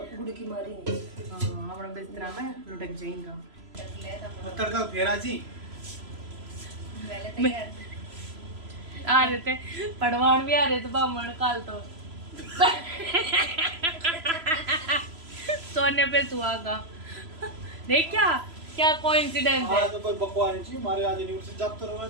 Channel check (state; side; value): late; left; 3.0 ms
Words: मारेंगे। हाँ अपना बिस्तरा में लुढ़क जाएगा। तड़का फेरा जी आ रहे थे पड़वान भी आ रहे थे बामण काल तो सोने पे सुहागा। देख क्या क्या कोइंसिडेंस है। आज तो कोई बकवास नहीं थी, हमारे आज यूनिवर्सिटी जाते रहो।